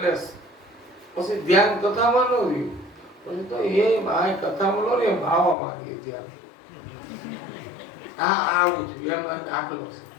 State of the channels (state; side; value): drops out; right; at 5.6 s